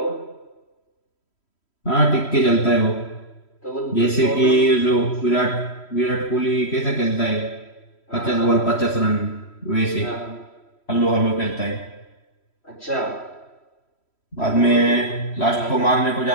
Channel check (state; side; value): late; right; 3.1 ms